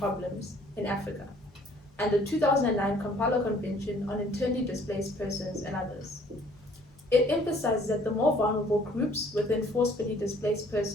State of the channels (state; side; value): normal; both; correlation 0.58